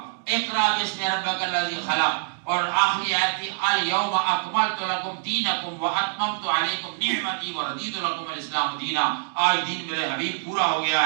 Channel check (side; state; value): left; silent; digital silence